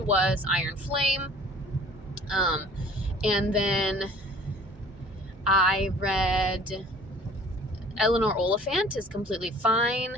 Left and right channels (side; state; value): both; normal; correlation 0.50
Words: Iron Flame. And then I read Eleanor Oliphant is Completely Fine.